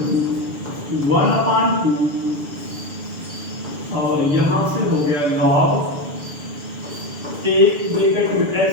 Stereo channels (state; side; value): late; left; 6.8 ms